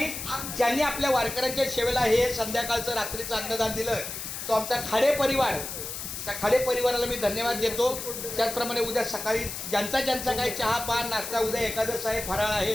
ज्यांनी आपल्या वारकऱ्यांच्या सेवेला हे संध्याकाळचं रात्रीचं अन्नदान दिलं तो आमचा खाडे परिवार त्या खाडे परिवाराला मी धन्यवाद देतो त्याचप्रमाणे उद्या सकाळी ज्यांचा काही चहा पान नाश्ता उद्या एकादश आहे फराळ आहे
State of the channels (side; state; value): left; noise; hiss, 7 dB below the sound